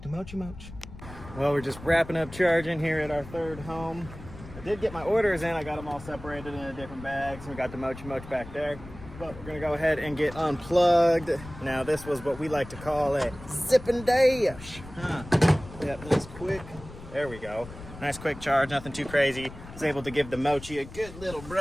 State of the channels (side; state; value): left; noise; rumble, 15 dB below the sound